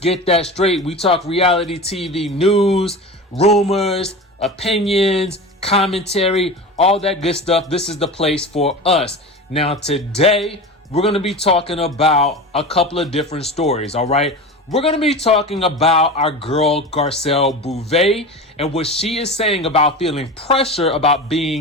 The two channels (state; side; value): normal; both; correlation 0.30